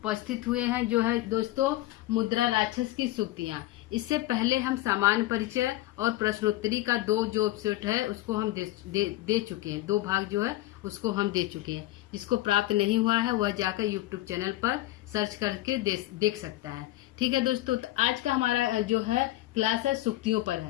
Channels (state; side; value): quieter; right; 16.7 dB